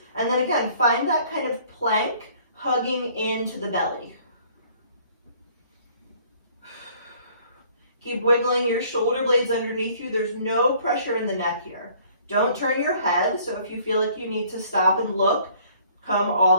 and then again, find that kind of plank hugging into the belly. Keep wiggling your shoulder blades underneath you. There's no pressure in the neck here. Don't turn your head, so if you feel like you need to stop and look, come all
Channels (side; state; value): both; inverted; correlation -0.57